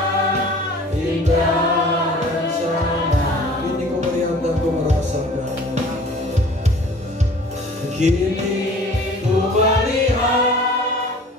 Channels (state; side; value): normal; both; correlation 0.48